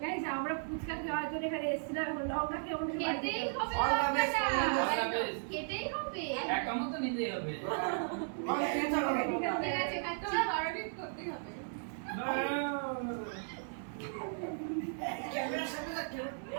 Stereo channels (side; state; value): left; silent; digital silence